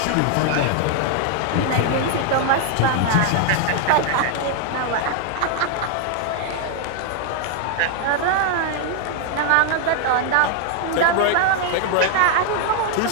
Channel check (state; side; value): different; both; correlation 0.00